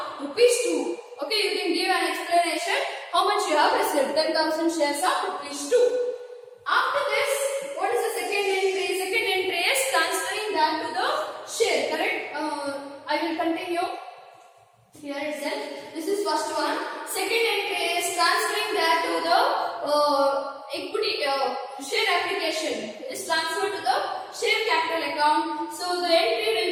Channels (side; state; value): both; identical; correlation 1.00